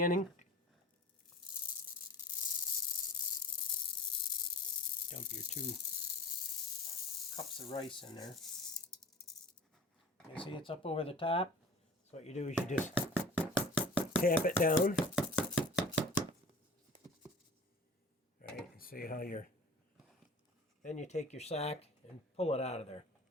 Dump your 2 cups of rice in there. You see it's up over the top. So what you do is you just tap it down. All right, and see how you're. Then you take your sack and pull it out of there.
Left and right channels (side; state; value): both; normal; correlation 0.42